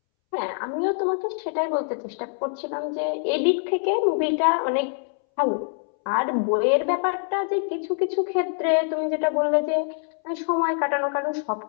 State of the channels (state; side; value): silent; right; 62 dB below the other